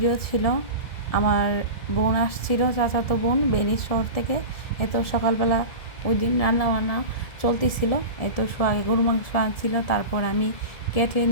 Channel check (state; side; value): late; right; 1.7 ms